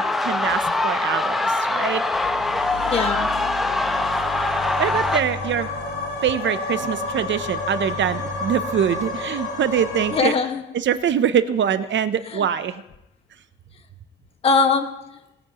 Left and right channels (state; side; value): normal; both; correlation 0.34